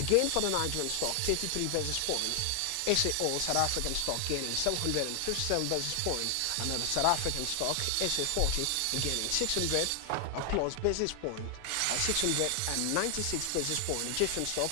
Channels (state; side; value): different; both; correlation 0.00